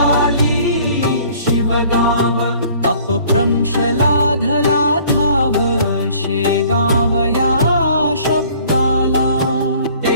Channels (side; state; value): both; inverted; correlation -0.53